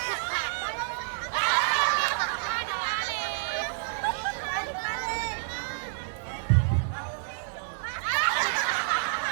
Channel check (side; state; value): left; silent; digital silence